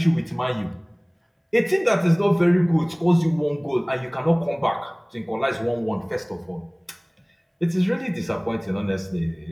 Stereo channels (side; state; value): both; identical; correlation 1.00